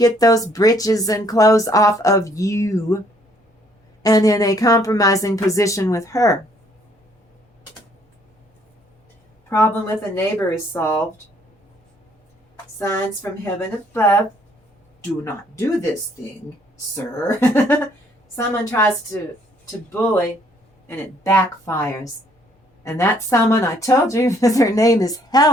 those britches and clothes off of you and in a compromising position with her. Problem with a neighbor is solved. Signs from heaven above. Do not do this thing, sir. Someone tries to bully and it backfires. And that someone, I told you, her name is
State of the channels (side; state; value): both; normal; correlation 0.64